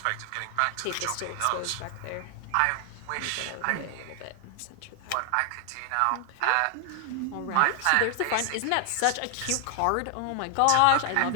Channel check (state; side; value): different; both; correlation 0.00